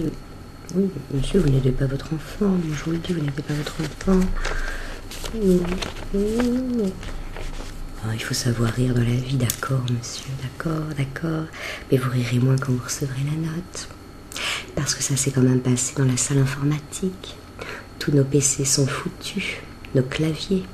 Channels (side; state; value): both; identical; correlation 1.00